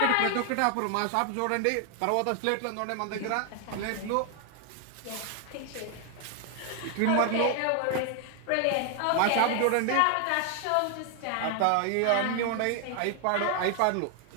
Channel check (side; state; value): both; different; correlation 0.00